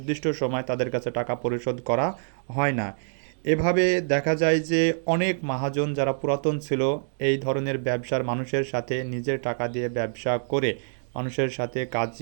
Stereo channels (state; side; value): silent; left; digital silence